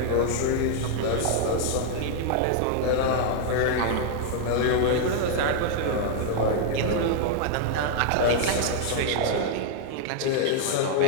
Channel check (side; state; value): both; different; correlation 0.00